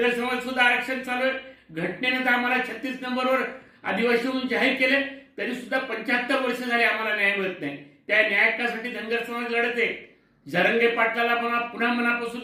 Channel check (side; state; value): both; identical; correlation 1.00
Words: समाज सुद्धा आरक्षण चालू आहे. घटनेनं तर आम्हाला 36 नंबरवर आदिवासी म्हणून जाहीर केले, तरी सुद्धा 75 वर्ष झाले आम्हाला न्याय मिळत नाही. त्या न्याय हक्कासाठी धनगर समाज लढत आहे. जरंगे पाटलाला पुन्हा मनापासून